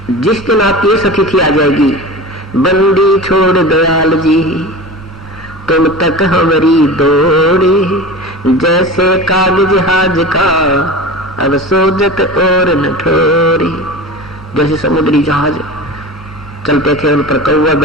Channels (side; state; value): left; noise; hum, 23 dB below the sound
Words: जिस दिन आपकी स्थिति आ जाएगी, बंदी छोड़ दयाल जी तुम तक हमारी दौड़ी, जैसे कागज जहाज का अब सोजत और न ठोरी। जैसे समुद्री जहाज चलते थे, उन पर कौवे